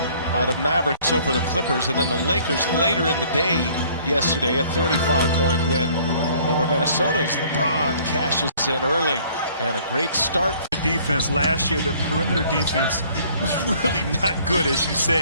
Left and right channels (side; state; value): both; inverted; correlation -0.57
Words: by the Mavericks over the Clippers, and then the Lakers later in the day yesterday, a 35-point win over Minnesota's LeBron cashes in early. And a great start. The defense last year, the perimeter defense was really not good, as you